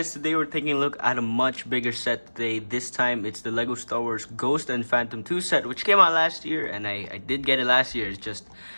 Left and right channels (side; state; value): both; inverted; correlation -1.00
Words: Today we're taking a look at a much bigger set today. This time it's the Lego Star Wars Ghost and Phantom 2 set, which came out last year, and I did get it last year. It's just